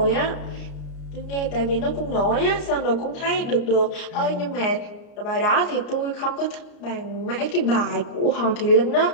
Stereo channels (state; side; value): late; right; 34 ms